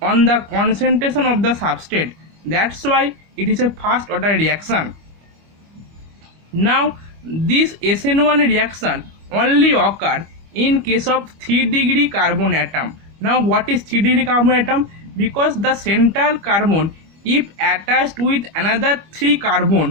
on the concentration of the substrate. That's why it is a first order reaction. Now this SN1 reaction only occur in case of 3-degree carbon atom. Now what is 3-degree carbon atom? Because the central carbon, if attached with another 3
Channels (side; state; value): left; late; 25 ms